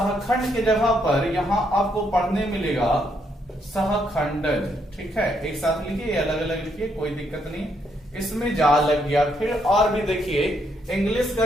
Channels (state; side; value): normal; both; correlation 0.75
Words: के जगह पर यहां आपको पढ़ने मिलेगा सहखंडज। ठीक है, एक साथ लिखिए, अलग अलग लिखिए, कोई दिक्कत नहीं, इसमें जा लग गया। फिर और भी देखिए, इंग्लिश का